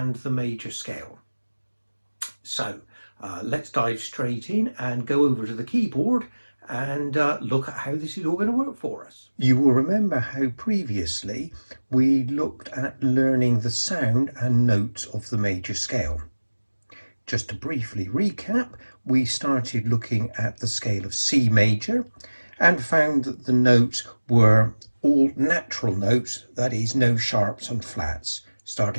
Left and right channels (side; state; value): both; inverted; correlation -1.00